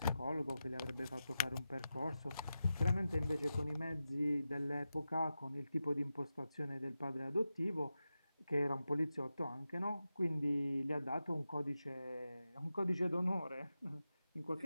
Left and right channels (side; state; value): both; inverted; correlation -0.91